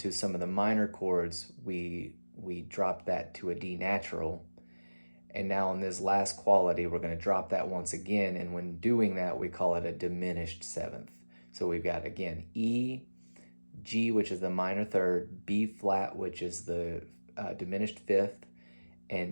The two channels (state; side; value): inverted; both; correlation -1.00